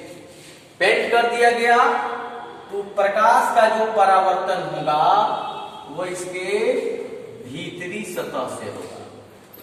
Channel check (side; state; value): both; identical; correlation 1.00